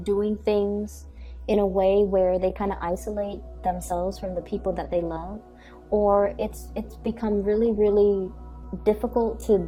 things in a way where they kind of isolate themselves from the people that they love, or it's become really, really difficult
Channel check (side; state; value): both; identical; correlation 1.00